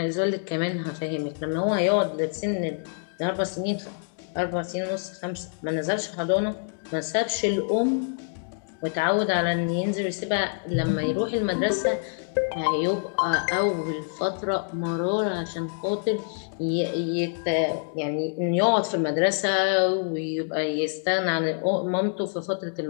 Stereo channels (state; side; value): silent; right; 61 dB below the other